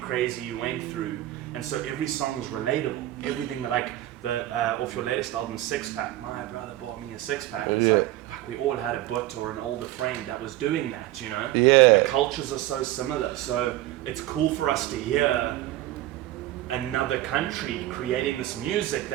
you went through. And so every song is relatable. Everything that like off your latest album, Six Pack, my brother bought me a six pack. It's like, fuck, we all had a butt or an older friend that was doing that, you know? Yeah. The cultures are so similar. So it's cool for us to hear another country creating this music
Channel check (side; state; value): left; quieter; 15.3 dB